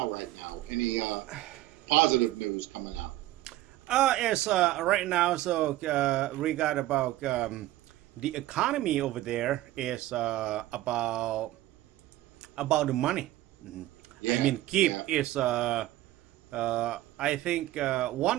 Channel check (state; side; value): quieter; left; 15.7 dB